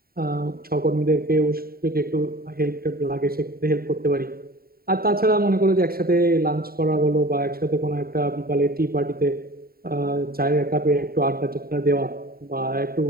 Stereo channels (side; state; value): left; late; 0.43 ms